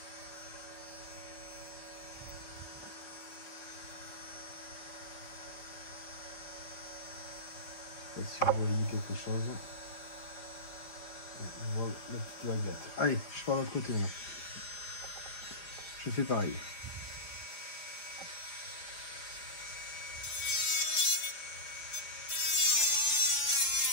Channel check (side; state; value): right; late; 4.9 ms